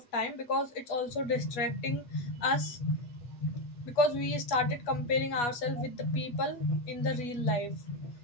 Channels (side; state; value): right; late; 8.3 ms